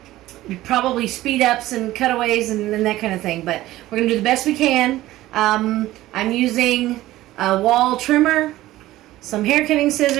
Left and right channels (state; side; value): quieter; left; 15.9 dB